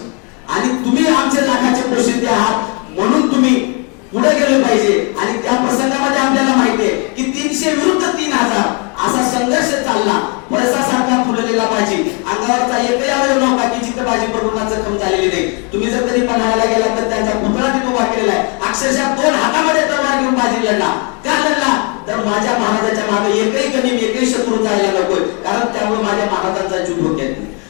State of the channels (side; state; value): right; quieter; 34.6 dB